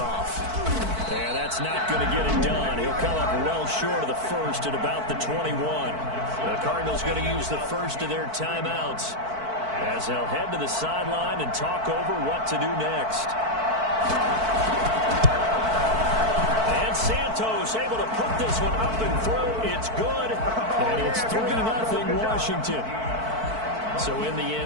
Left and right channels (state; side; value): late; left; 4.5 ms